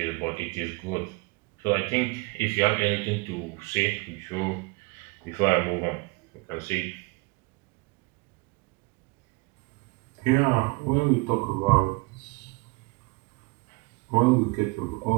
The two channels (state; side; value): quieter; left; 26.5 dB